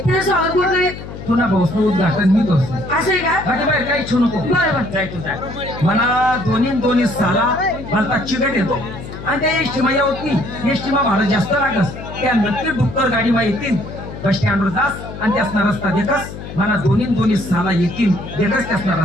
तुला भाऊस उद्घाटन मी करतो माझ्या बाहेर काही इच्छू नको जाय तू जाय मला दोन्ही साला मला चिकट येतो आणि त्या एसटी मा होत नाही एसटी मा भाडं जास्त लागस त्या नक्की डुक्कर गाडी मा येतील बस स्टँडवर जास आणि त्यासना रस्ता देखस मला दोन्ही साला येतील देखस त्यासना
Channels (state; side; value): noise; left; hum, 11 dB below the sound